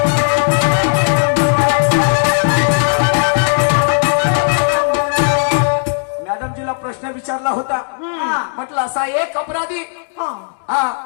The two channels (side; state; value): right; silent; digital silence